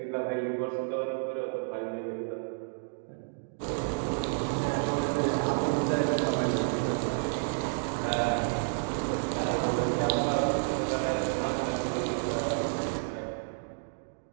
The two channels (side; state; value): left; silent; digital silence